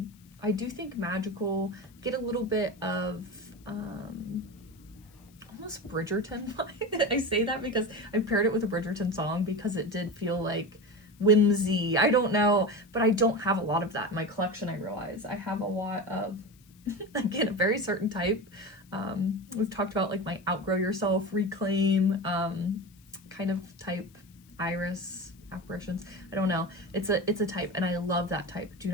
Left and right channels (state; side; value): noise; left; hiss, 29 dB below the sound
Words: I do think magical, get a little bit of almost Bridgerton vibe. I say that because I paired it with a Bridgerton song because it did feel like whimsy. I don't know, but I don't have a lot of that in my collection. I realize I have a lot of, again, a very certain type. We've talked about like my outgrow yourself, reclaim kind of type, iris apparitions. I don't know. It's a type, and I love that type. Do